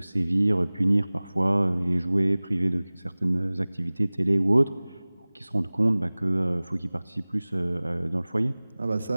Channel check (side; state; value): both; inverted; correlation -0.99